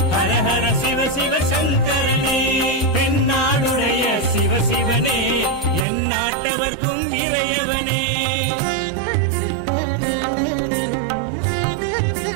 ஹரஹர சிவ சிவ சங்கரனே, தென்னாடுடைய சிவசிவனே, என் நாட்டவர்க்கும் இறையவனே.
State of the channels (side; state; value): left; drops out; at 5.9 s